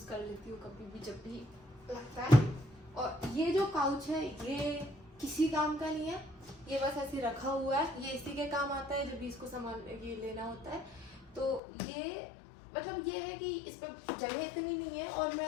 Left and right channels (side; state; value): right; drops out; at 11.6 s